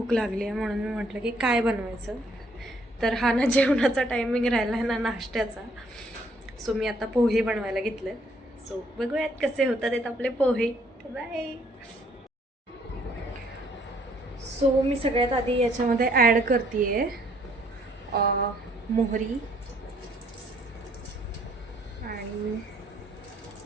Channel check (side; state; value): both; normal; correlation 0.66